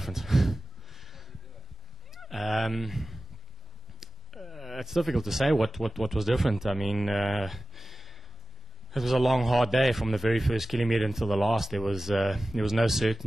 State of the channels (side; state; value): both; normal; correlation 0.97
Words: It's difficult to say what was different. I mean, it was a long, hard day from the very first kilometer until the last. There was no